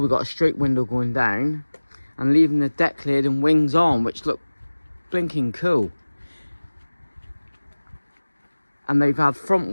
got a straight window going down, and leaving the deck lid and wings on, which look blinking cool. And they've had front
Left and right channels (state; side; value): inverted; both; correlation -1.00